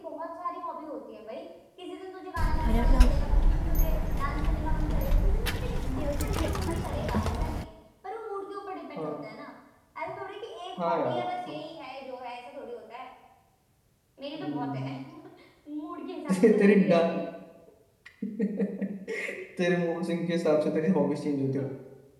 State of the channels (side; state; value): both; identical; correlation 1.00